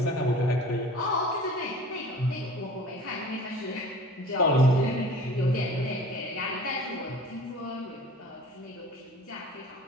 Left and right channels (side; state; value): both; normal; correlation 0.43